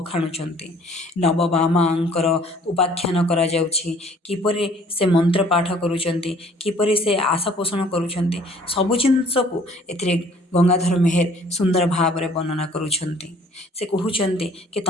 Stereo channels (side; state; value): both; normal; correlation 0.56